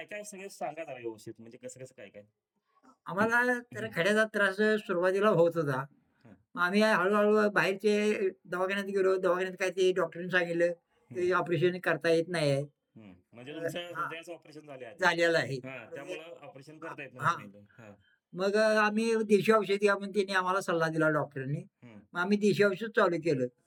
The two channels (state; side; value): identical; both; correlation 1.00